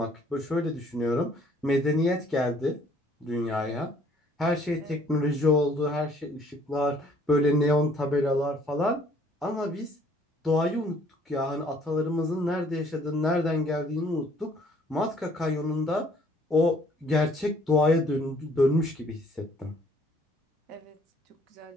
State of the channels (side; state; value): both; normal; correlation 0.60